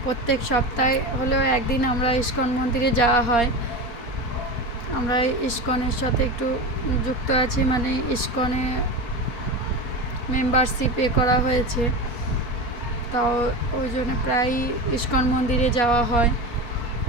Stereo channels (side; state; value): right; late; 4.2 ms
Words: প্রত্যেক সপ্তাহে হলেও একদিন আমরা ইস্কন মন্দিরে যাওয়া হয়। আমরা ইস্কনের সাথে একটু যুক্ত আছি, মানে ইস্কনে মেম্বারশিপ করা হয়েছে, তাও ওই জন্য প্রায়ই ইস্কন মন্দিরে যাওয়া হয়।